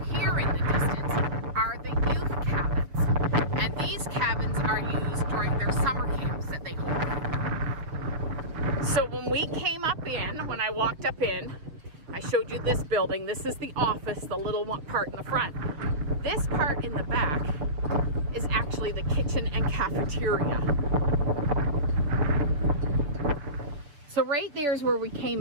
in the distance, are the youth cabins. And these cabins are used during their summer camps that they hold. So when we came up in, when I walked up in, I showed you this building. This is the office, the little one part in the front. This part in the back is actually the kitchen and cafeteria. So right there is where we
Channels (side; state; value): left; late; 7.2 ms